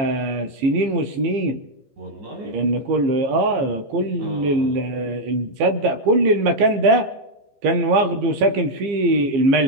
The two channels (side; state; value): left; late; 15 ms